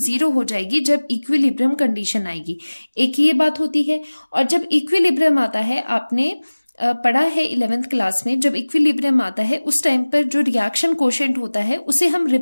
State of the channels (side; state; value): both; inverted; correlation -1.00